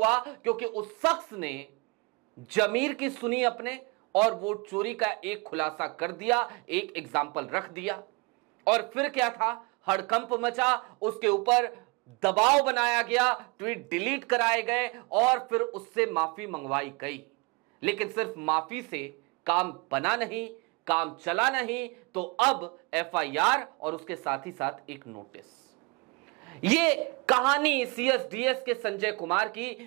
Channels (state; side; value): quieter; left; 28.3 dB